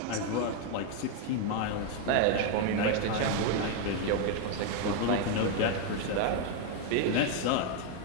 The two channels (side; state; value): both; different; correlation 0.01